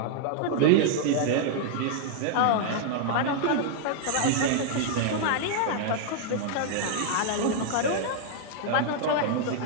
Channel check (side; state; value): both; different; correlation 0.00